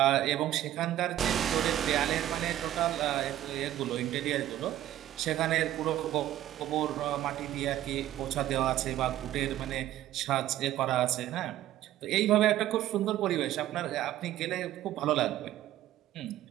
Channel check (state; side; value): quieter; left; 13.2 dB